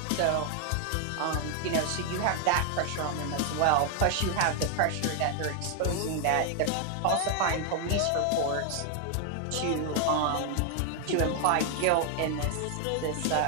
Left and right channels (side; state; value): both; different; correlation 0.00